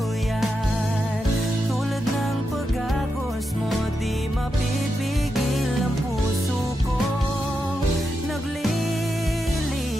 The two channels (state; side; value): normal; both; correlation 0.86